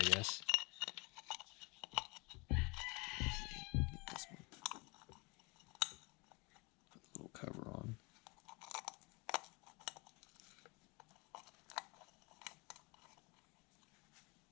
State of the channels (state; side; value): quieter; right; 27.9 dB